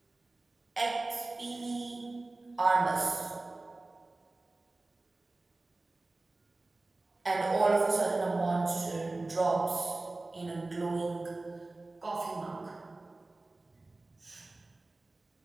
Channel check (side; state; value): left; quieter; 3.1 dB